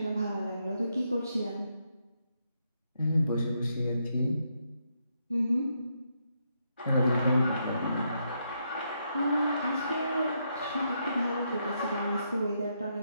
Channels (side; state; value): both; inverted; correlation -0.78